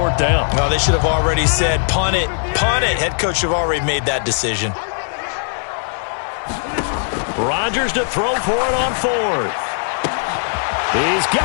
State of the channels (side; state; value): right; silent; digital silence